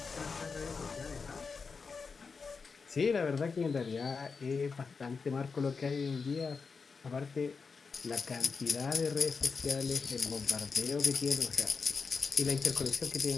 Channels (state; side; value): quieter; right; 5.0 dB